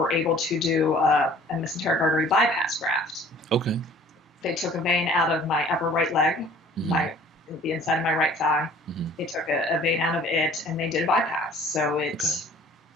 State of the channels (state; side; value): normal; both; correlation 0.51